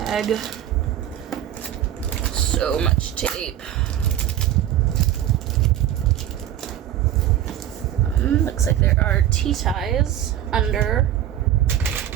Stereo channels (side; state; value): left; quieter; 11.6 dB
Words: So much tape. Looks like there are T-ties under